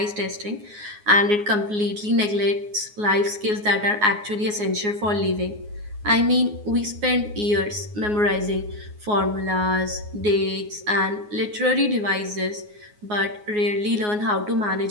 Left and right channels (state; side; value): late; left; 9.6 ms